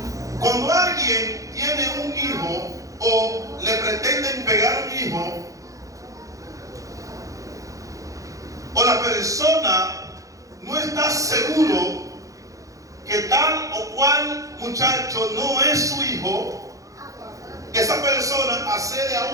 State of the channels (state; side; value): late; left; 0.16 ms